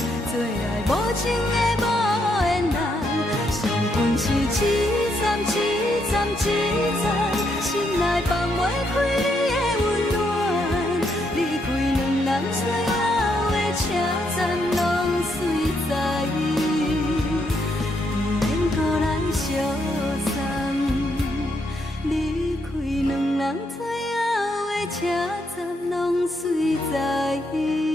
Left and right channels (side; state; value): both; normal; correlation 0.76